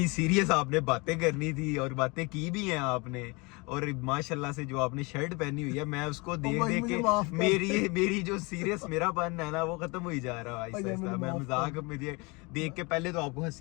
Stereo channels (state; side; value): quieter; right; 27.5 dB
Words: सीरियस आपने बातें करनी थी और बातें की भी हैं आपने, और माशाल्लाह से जो आपने शर्ट पहनी हुई है मैं उसको देख भाई देख मुझे के माफ कर। मेरी जो सीरियस मेरा पन है ना वो खत्म हो ही जा रहा है आहिस्ता भाई आहिस्ता। मुझे मैं माफ मजाक मुझे देख के पहले तो आपको